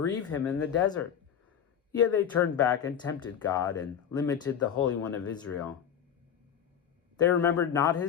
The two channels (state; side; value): quieter; right; 8.5 dB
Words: him in the desert? Yet they turned back and tempted God, and limited the Holy One of Israel. They remembered not